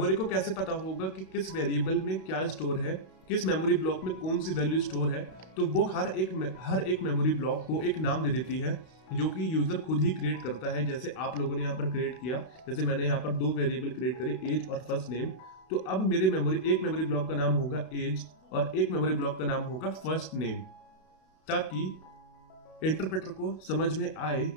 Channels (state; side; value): late; right; 32 ms